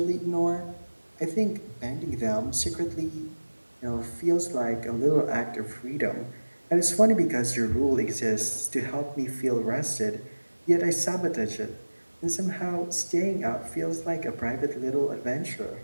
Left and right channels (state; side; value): inverted; both; correlation -1.00